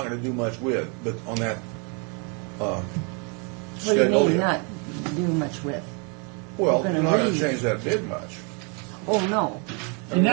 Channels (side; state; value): left; quieter; 35.5 dB